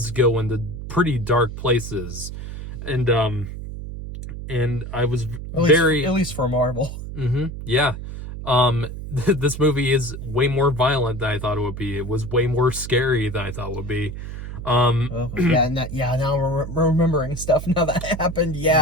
go into pretty dark places, and I was at least for Marvel. Mm-hmm. Yeah. This movie is way more violent than I thought it would be. It was way more scary than I thought it would be. Now we're remembering stuff now that happened.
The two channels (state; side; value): noise; right; hum, 9 dB below the sound